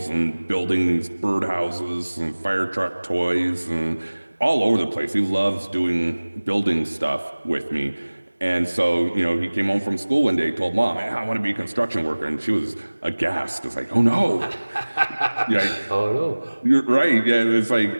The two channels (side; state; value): both; inverted; correlation -1.00